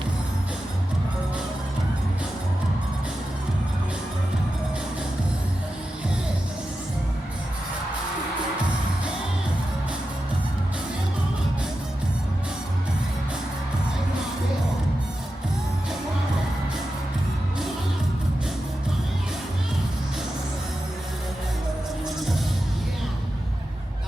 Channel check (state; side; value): normal; both; correlation 0.91